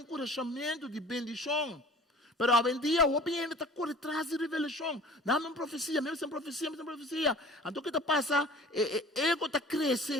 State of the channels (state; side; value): normal; both; correlation 0.45